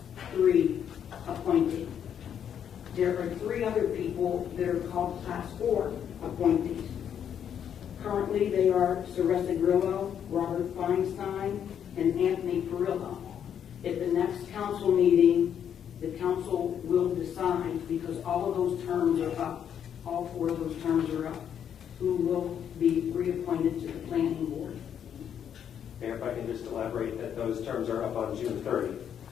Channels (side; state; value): right; quieter; 8.8 dB